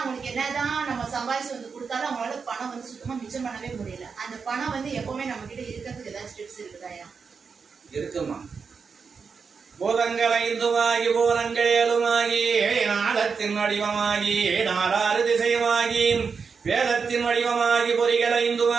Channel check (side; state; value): left; quieter; 5.5 dB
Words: என்னதான் நம்ம சம்பாதிச்சு கொடுத்தாலும் அவங்களால பணம் சுத்தமா மிச்சம் பண்ணவே முடியல. அந்த பணம் எப்பவுமே நம்ம கிட்ட இருக்கிறதுக்கு ஏதாச்சும் டிப்ஸ் இருக்குதா ஐயா? இருக்குமா. பூதங்கள் ஐந்துமாகி பூதங்கள் ஏழுமாகி நாதத்தின் வடிவமாகி நாலாறு திசையுமாகி வேதத்தின் வடிவமாகி பொறிகள்